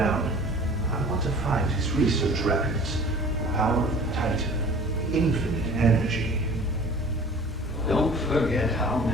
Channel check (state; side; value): normal; both; correlation 0.45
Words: I want to find his research records. The power of the Titan, infinite energy. Don't forget how